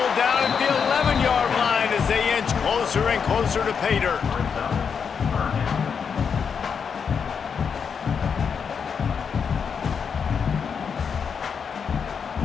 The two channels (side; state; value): right; quieter; 6.5 dB